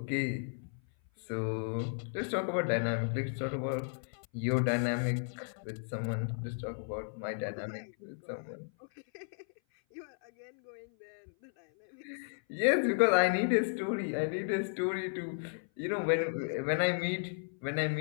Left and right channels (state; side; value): silent; right; 55 dB below the other